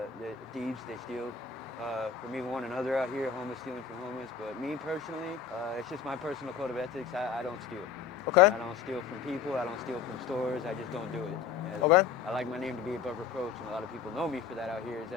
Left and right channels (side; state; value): right; quieter; 6.6 dB